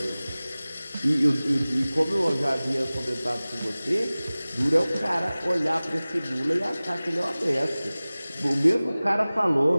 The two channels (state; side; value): inverted; both; correlation -0.98